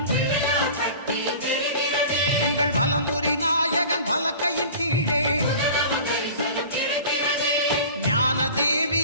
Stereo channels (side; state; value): both; inverted; correlation -0.40